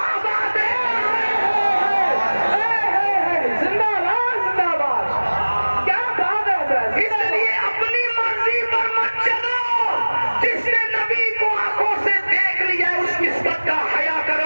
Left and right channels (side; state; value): both; inverted; correlation -1.00